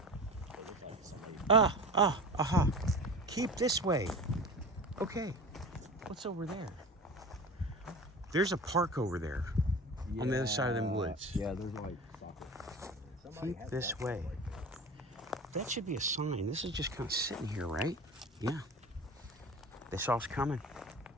aha. Keep this way. Okay. What's over there? There's a park over there. On the other side of them woods. Yeah, there's like soccer. Keep this way. That should be a sign. This is just kind of sitting here, right? Yeah. They saw us coming.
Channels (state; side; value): normal; both; correlation 0.33